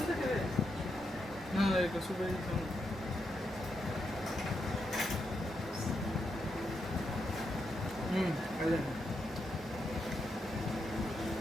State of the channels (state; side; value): normal; both; correlation 0.83